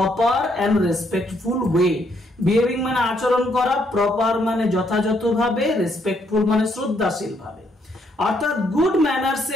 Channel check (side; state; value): both; normal; correlation 0.72